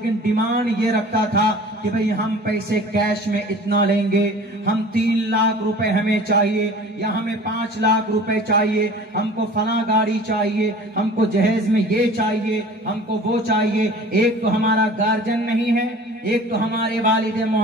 डिमांड ये रखता था कि भाई हम पैसे कैश में इतना लेंगे, हम 3 लाख रुपए हमें चाहिए, या हमें 5 लाख रुपए चाहिए, हमको फला गाड़ी चाहिए, हमको जहेज में ये चाहिए, हमको वो चाहिए। एक तो हमारा गार्जियन नहीं है, एक तो हमारे वालिद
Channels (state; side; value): normal; both; correlation 0.43